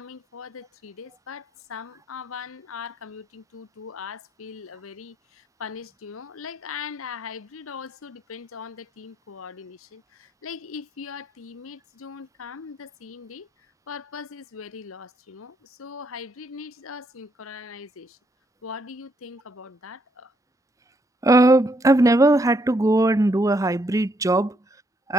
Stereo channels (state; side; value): normal; both; correlation 0.74